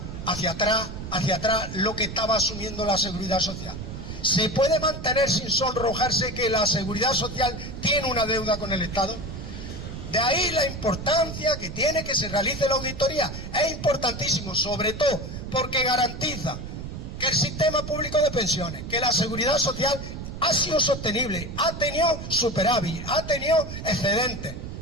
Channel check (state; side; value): noise; right; rumble, 8 dB below the sound